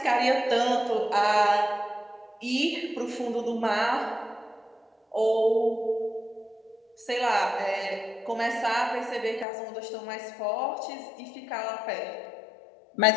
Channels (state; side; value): drops out; right; at 9.5 s